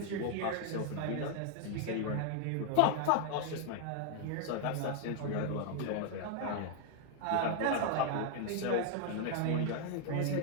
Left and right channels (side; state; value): both; different; correlation 0.00